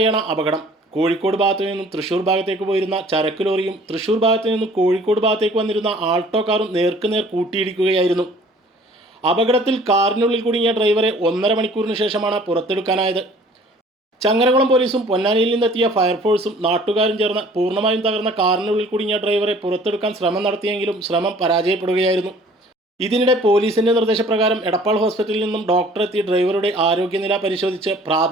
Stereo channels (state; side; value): normal; both; correlation 0.52